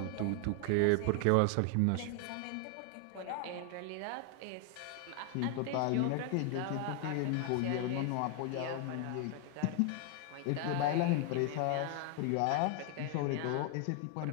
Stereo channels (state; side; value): different; both; correlation 0.00